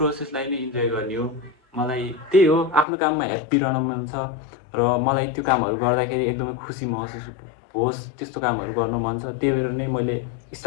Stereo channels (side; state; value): right; drops out; at 2.9 s